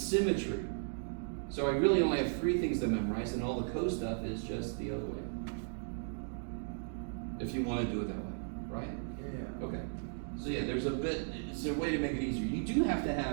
So I really only have 3 things to memorize, and all the co stuff is just the other way. If you want to do it that way, right? Yeah. Okay. So yeah, there's a bit, it's a way to make it easier. You do have to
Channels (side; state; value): left; silent; digital silence